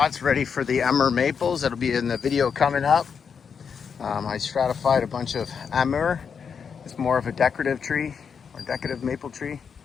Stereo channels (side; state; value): right; quieter; 6.5 dB